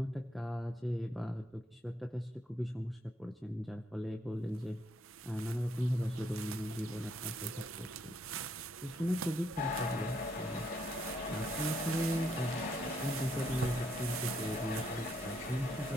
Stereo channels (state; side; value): normal; both; correlation 0.73